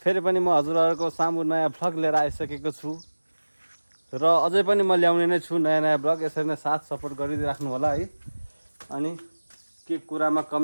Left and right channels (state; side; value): inverted; both; correlation -1.00